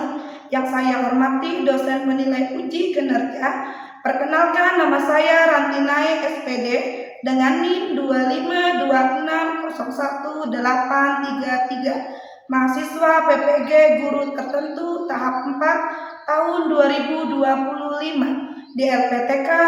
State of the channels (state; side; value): identical; both; correlation 1.00